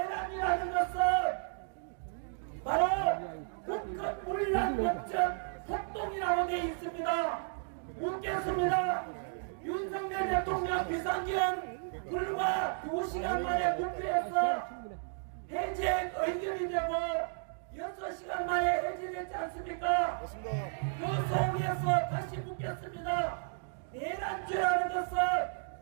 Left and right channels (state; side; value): silent; left; 55 dB below the other